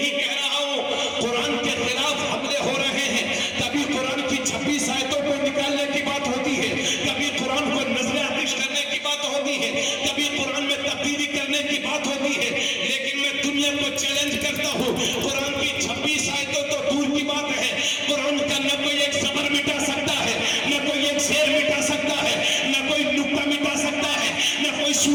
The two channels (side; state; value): both; identical; correlation 1.00